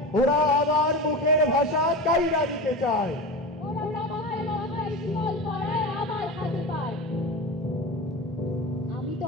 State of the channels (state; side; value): normal; both; correlation 0.27